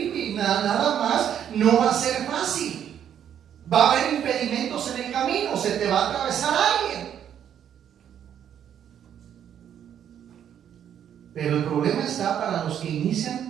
y nada más no va a ser fácil. Va a haber impedimentos en el camino, se te va a atravesar alguien. Pero el problema está para los que inician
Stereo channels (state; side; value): quieter; left; 9.4 dB